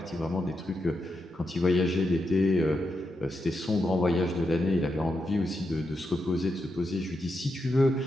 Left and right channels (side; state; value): both; normal; correlation 0.85